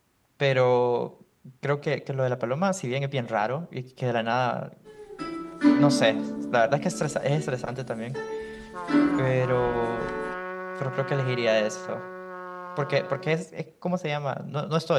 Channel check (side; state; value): both; identical; correlation 1.00